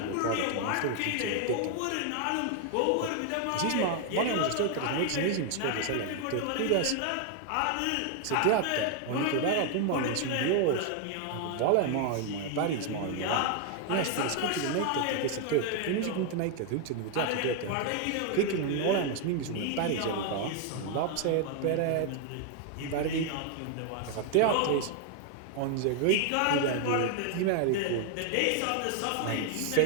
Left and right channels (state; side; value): different; both; correlation 0.00